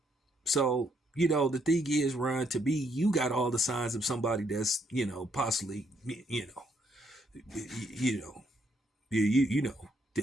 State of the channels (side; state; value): both; normal; correlation 0.73